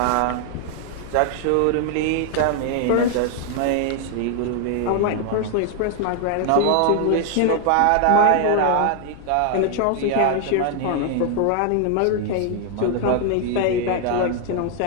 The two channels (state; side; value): different; both; correlation 0.00